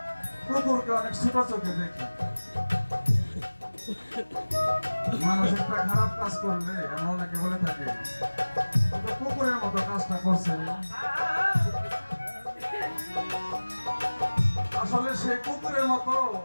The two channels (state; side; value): inverted; both; correlation -1.00